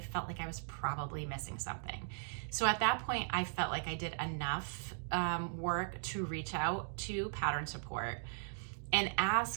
like I was probably missing something. So at that point, I felt like I did enough work to reach out to pattern support and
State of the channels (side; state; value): left; silent; digital silence